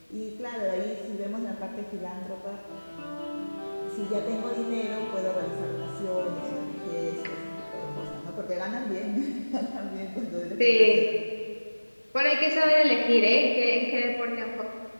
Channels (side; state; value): both; inverted; correlation -1.00